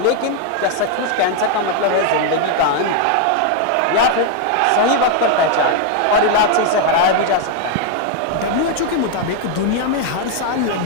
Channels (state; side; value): different; both; correlation 0.01